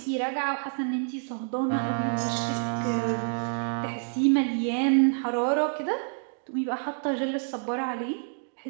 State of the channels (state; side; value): silent; left; digital silence